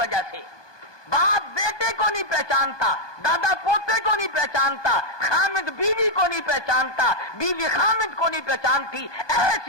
سے، باپ بیٹے کو نہیں پہچانتا، دادا پوتے کو نہیں پہچانتا، خامد بیوی کو نہیں پہچانتا، بیوی خامد کو نہیں پہچانتی۔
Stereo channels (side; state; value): right; late; 1.2 ms